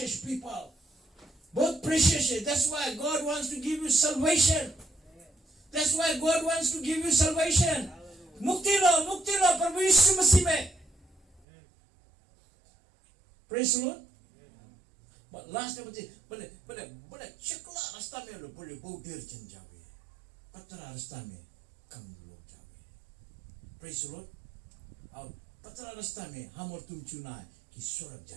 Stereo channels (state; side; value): drops out; left; at 11.4 s